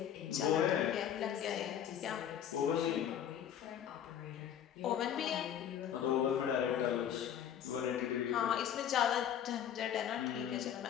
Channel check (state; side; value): quieter; right; 9.6 dB